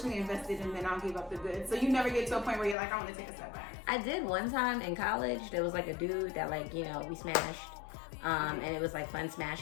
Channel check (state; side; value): drops out; right; at 2.8 s